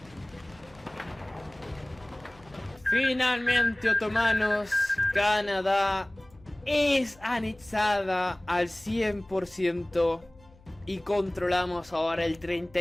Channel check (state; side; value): noise; left; hum, 26 dB below the sound